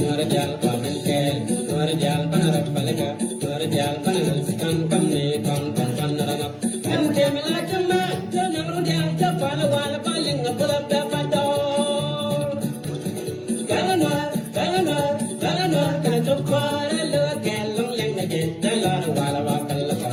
Norjal Palanke, Norjal Panarapalaka, Norjal Panaraskan Kamne, Panarama, and Kamila Kama, the Namrudal, the Palawala Paling, the Pulapa Pato. Galanor, Galanor, Galanor, Kanatopara, Galang, Langage, the Lala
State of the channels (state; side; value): identical; both; correlation 1.00